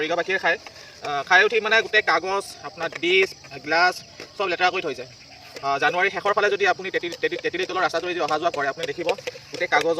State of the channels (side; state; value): both; identical; correlation 1.00